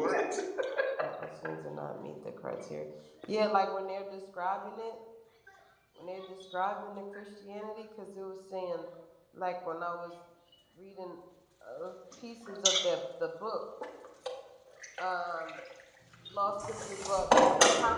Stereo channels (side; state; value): both; identical; correlation 1.00